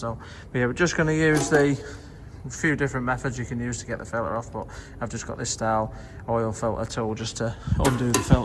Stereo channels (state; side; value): identical; both; correlation 1.00